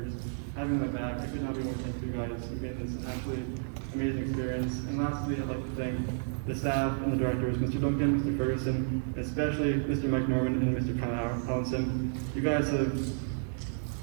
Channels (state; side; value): silent; left; digital silence